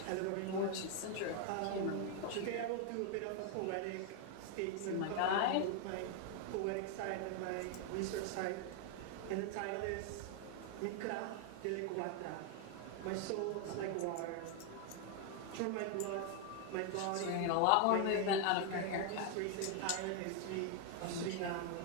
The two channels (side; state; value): both; different; correlation 0.00